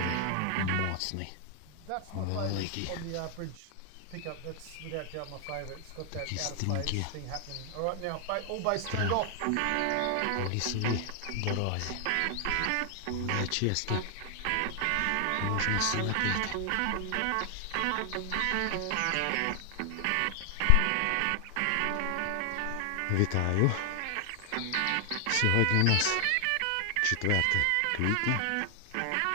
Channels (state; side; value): different; both; correlation 0.00